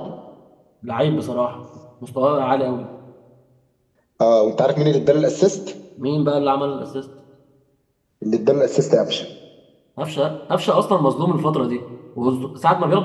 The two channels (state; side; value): identical; both; correlation 1.00